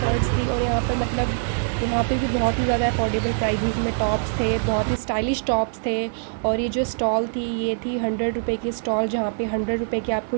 थी। और यहाँ पर मतलब यहाँ पे भी बहुत ही ज़्यादा अफोर्डेबल प्राइसेस में टॉप्स थे, बहुत ही स्टाइलिश टॉप्स थे। और ये जो स्टॉल थी ये थी 100 रुपये की स्टॉल, जहाँ पे 100 रुपये की आपको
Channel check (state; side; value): silent; left; 57 dB below the other